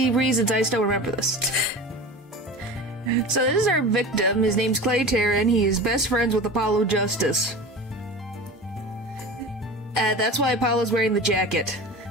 reasons, I still remember this. So this is our victim. His name's Clay Taryn. He is best friends with Apollo Justice. That's why Apollo's wearing the jacket.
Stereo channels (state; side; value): normal; both; correlation 0.33